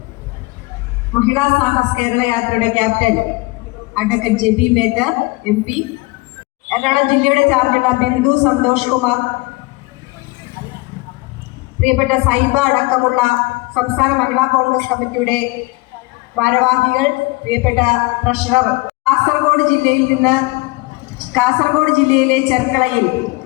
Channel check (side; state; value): right; quieter; 23.7 dB